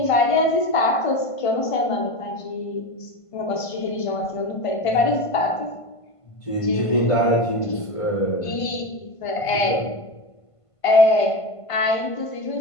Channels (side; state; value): right; late; 1.5 ms